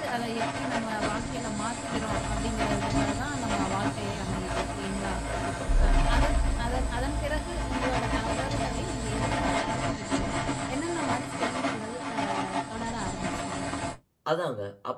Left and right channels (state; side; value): identical; both; correlation 1.00